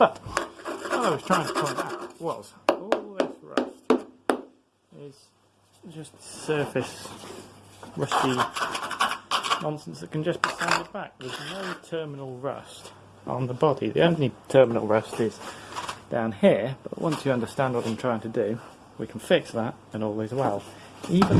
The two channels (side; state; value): both; identical; correlation 1.00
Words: what I was trying to point out was all this rust is just surface rusty nonsense that can just be sanded back. There's no terminal rust on the body. The only terminal rust is down here, but once you understand what I'm trying to do, we can fix that and all is well. Even